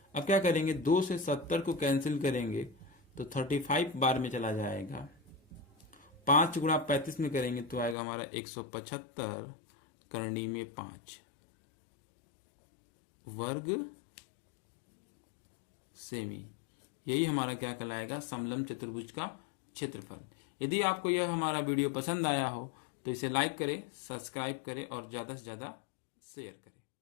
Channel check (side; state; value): right; drops out; at 8.0 s